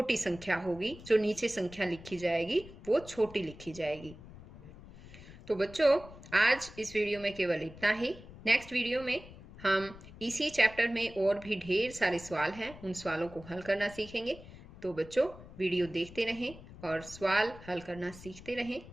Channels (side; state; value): left; noise; rumble, 17 dB below the sound